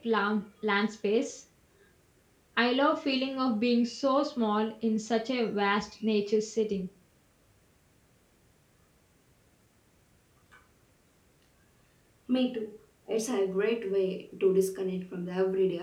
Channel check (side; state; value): both; identical; correlation 1.00